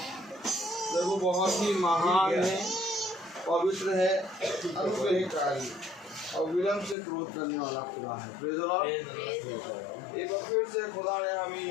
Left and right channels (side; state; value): right; drops out; at 7.0 s